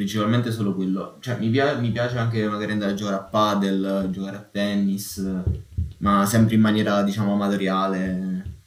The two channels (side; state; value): both; identical; correlation 1.00